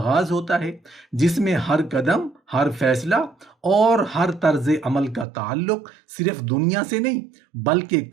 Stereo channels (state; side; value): drops out; left; at 5.2 s